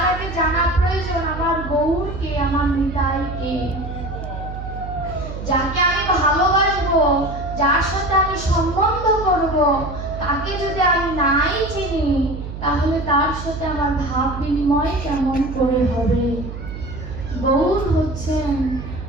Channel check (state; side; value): noise; right; hum, 9 dB below the sound